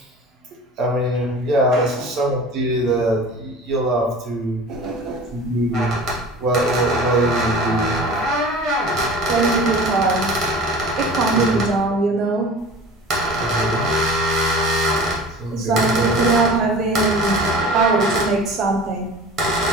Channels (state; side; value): normal; both; correlation 0.39